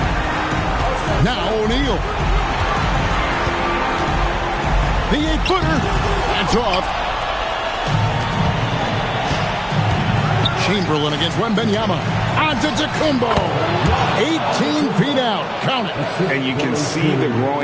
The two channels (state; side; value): identical; both; correlation 1.00